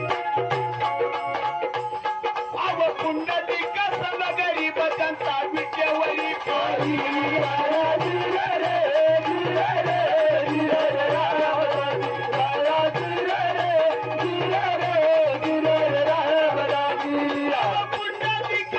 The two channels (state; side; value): identical; both; correlation 1.00